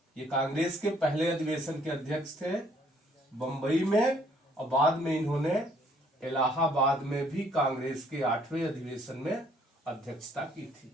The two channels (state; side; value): normal; both; correlation 0.63